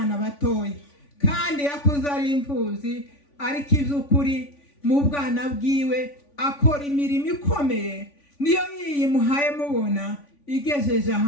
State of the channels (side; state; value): right; late; 3.5 ms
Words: batoya, kandi yakuze ari imfuzi, ariko iby'ukuri mu bwana bwiwe akora imirimo ikomeye. Niyo yimuhaye mubona igejeje